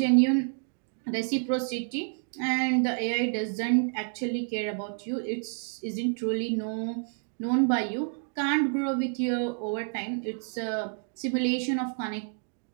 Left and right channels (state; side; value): silent; left; 58 dB below the other